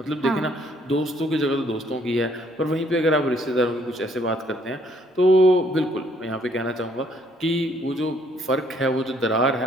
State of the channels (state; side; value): normal; both; correlation 0.65